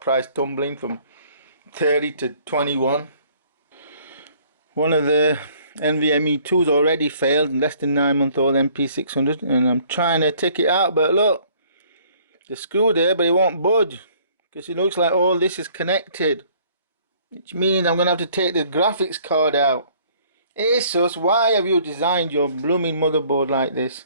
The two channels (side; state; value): both; inverted; correlation -0.58